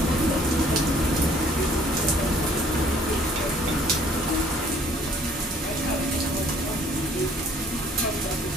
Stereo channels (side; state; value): both; normal; correlation 0.58